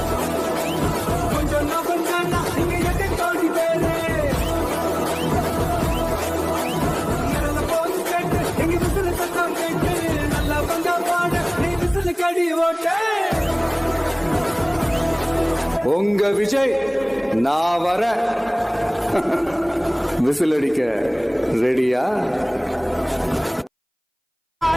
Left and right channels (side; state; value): both; identical; correlation 1.00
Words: கொஞ்சம் நகர்ந்தானா இங்க எட்டு கோடி பேரு. இறந்த போது கேட்டு எங்க விசில சத்தம் கேட்டு, நல்லா வந்தா பாடு நீ விசில கடி ஓட்டு. உங்க விஜய் நான் வர விசில் அடிக்க ரெடியா?